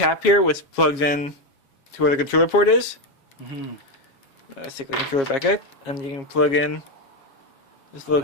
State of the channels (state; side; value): late; right; 7.3 ms